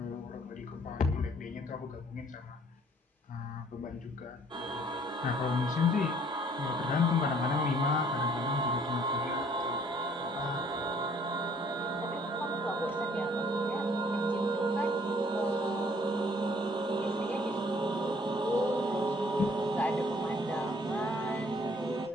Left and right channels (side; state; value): both; normal; correlation 0.60